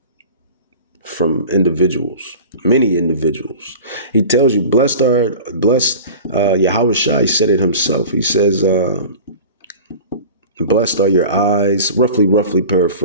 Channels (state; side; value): inverted; both; correlation -0.37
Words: from individuals, many individuals. He tells you, blessed Yahweh Shai said it himself. He says, blessed are your eyes, roughly